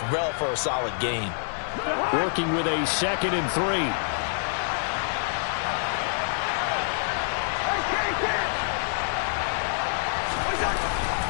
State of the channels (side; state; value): right; silent; 58 dB below the other